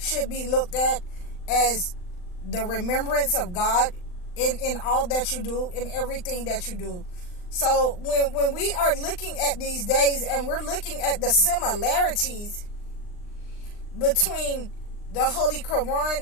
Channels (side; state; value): right; late; 39 ms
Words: be looked at as the remembrance of God in all that you do, in everything that you do. So when we are looking at these days and we're looking at the similarities between the Holy Quran